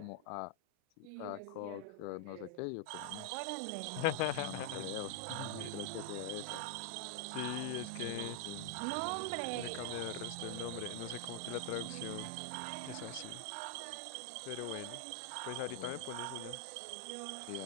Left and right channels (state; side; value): different; both; correlation 0.00